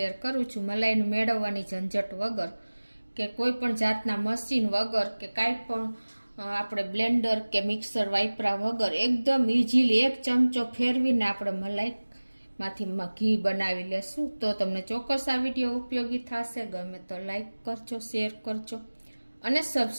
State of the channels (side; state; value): both; inverted; correlation -1.00